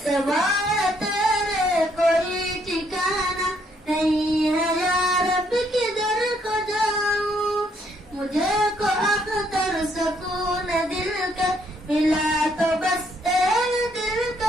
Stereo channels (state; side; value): normal; both; correlation 0.70